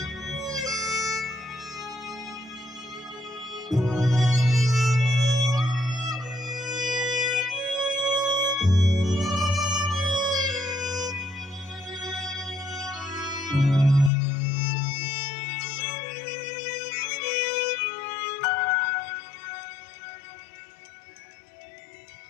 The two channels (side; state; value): right; drops out; at 14.1 s